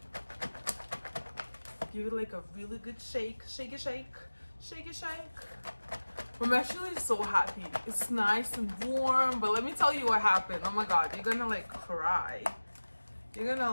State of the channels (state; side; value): inverted; both; correlation -1.00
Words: Give it like a really good shake. Shake it, shake. Shake it, shake. I'm actually so happy. It's nice and warm, but let me tell you what happened. Oh my god, you're gonna like cry. You're gonna